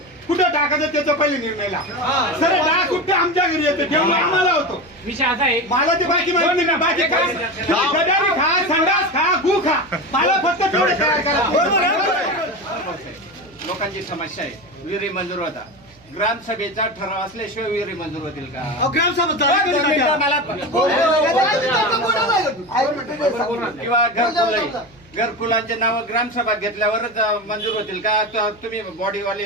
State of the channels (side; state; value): right; noise; hum, 28 dB below the sound